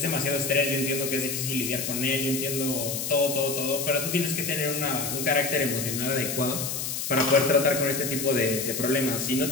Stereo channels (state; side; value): noise; left; hiss, 3 dB below the sound